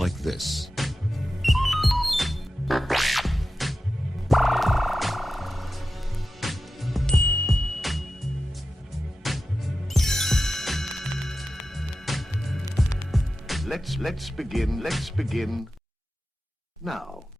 this. Let's begin now.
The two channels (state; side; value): normal; both; correlation 0.93